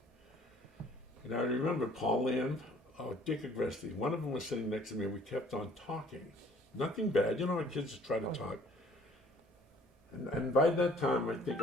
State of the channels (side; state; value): both; normal; correlation 0.56